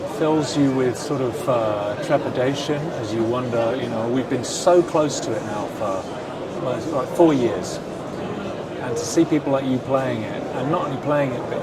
fills you with sort of trepidation as you wonder, you know, we've been so close to it now for almost like 4 years. And to see people like you playing it, and not only playing it, but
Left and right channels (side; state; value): both; identical; correlation 1.00